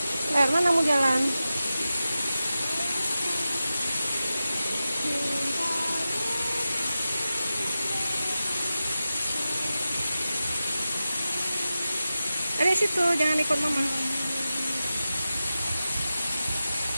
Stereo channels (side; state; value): both; inverted; correlation -0.93